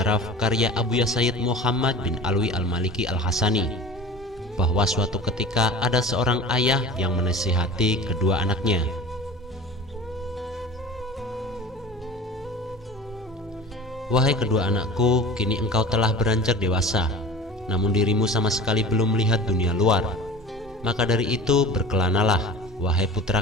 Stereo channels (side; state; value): both; normal; correlation 0.37